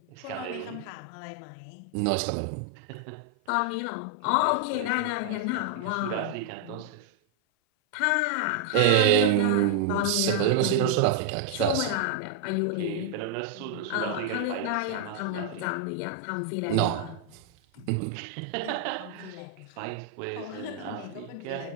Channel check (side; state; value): both; different; correlation 0.00